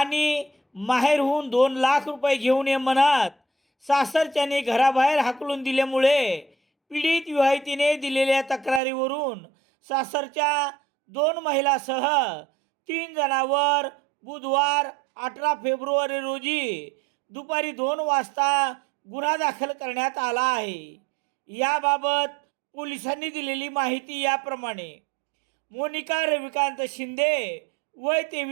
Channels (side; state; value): left; drops out; at 8.8 s